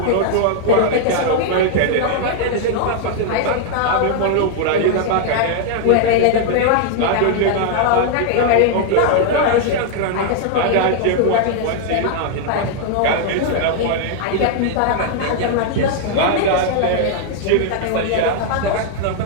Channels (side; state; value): both; different; correlation 0.00